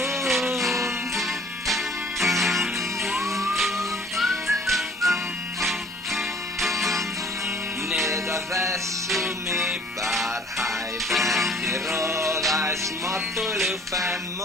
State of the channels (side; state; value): both; normal; correlation 0.55